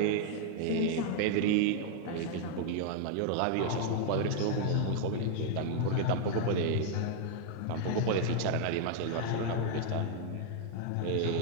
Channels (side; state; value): both; different; correlation 0.00